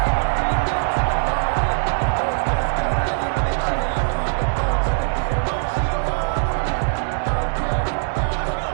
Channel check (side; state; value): left; silent; 65 dB below the other